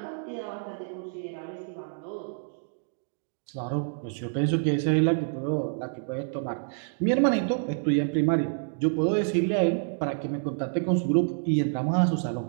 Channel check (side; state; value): left; silent; digital silence